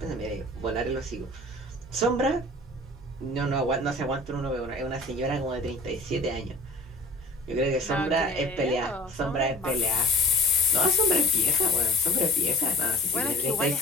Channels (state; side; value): normal; both; correlation 0.44